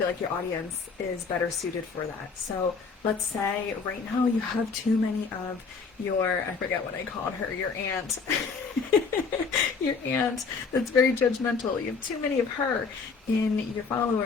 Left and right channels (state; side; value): quieter; right; 5.0 dB